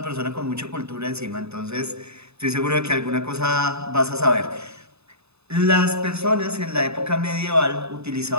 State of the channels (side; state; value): left; late; 0.80 ms